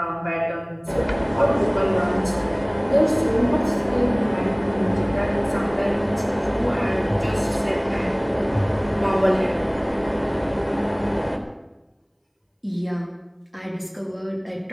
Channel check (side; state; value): both; identical; correlation 1.00